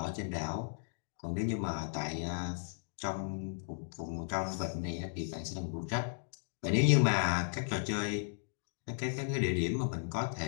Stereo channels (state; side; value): silent; right; digital silence